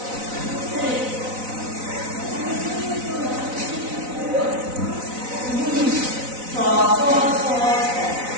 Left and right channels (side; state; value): left; late; 4.0 ms